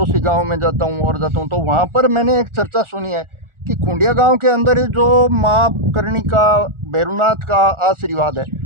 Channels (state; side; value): late; left; 1.4 ms